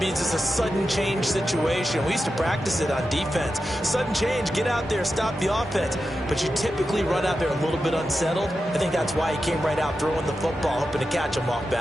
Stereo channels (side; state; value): both; normal; correlation 0.90